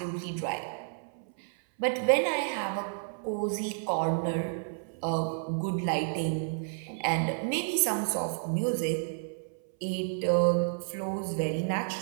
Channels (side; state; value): left; silent; 57 dB below the other